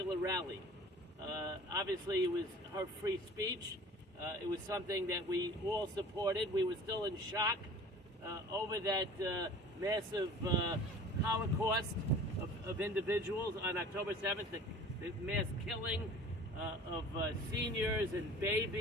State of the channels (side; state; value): both; normal; correlation 0.44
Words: rally. Obviously, it was her free speech. It was something that we all supported. We were still in shock over that massive Holocaust of individuals on October 7th, the mass killing of seniors and